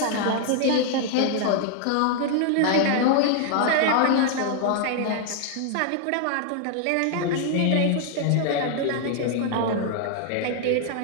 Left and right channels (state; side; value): different; both; correlation 0.00